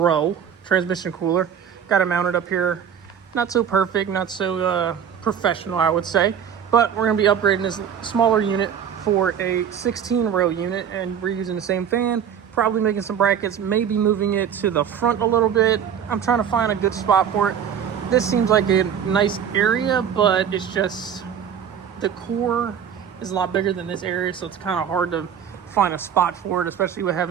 transmission cooler. Got it mounted up here. Not so perfect, not so professional, I would say. But we're going to be upgrading this smaller unit for a 16-row unit, and we're using the same fan. Probably making some brackets, maybe moving it to the front a little bit. I'm trying to find a good spot for it. This seems like a nice area, but it's just the core is a lot bigger than this area, so it's kind of hard to find a spot for it, especially with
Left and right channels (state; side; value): quieter; left; 8.4 dB